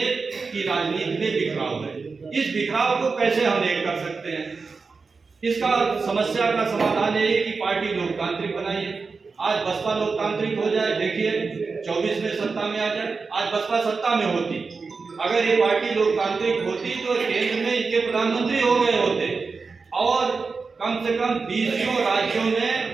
की राजनीति में बिखराव है। इस बिखराव को कैसे हम एक कर सकते हैं? इसका समस्या का समाधान यही कि पार्टी लोकतांत्रिक बनाइए। आज बसपा लोकतांत्रिक हो जाए, देखिए 24 में सत्ता में आ जाए। आज बसपा सत्ता में होती, अगर ये पार्टी लोकतांत्रिक होती तो केंद्र में इनके प्रधानमंत्री हो गए होते, और कम से कम 20 राज्यों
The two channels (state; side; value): quieter; left; 4.6 dB